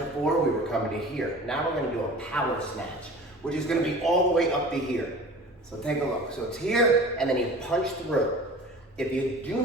we were coming to here. Now we're gonna do a power snatch, which is gonna be all the way up to here. So take a look. So it's here, and then you punch through. If you do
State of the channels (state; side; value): normal; both; correlation 0.40